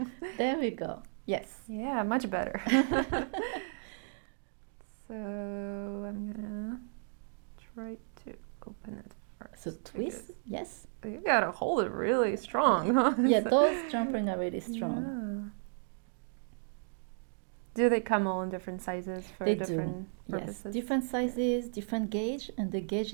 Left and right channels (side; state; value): left; silent; digital silence